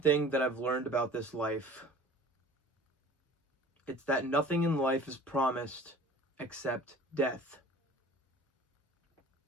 that I've learned about this life, it's that nothing in life is promised except death.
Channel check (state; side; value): normal; both; correlation 0.44